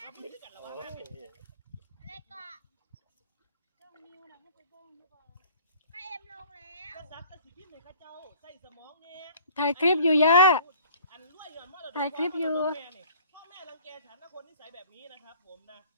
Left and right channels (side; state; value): both; inverted; correlation -0.50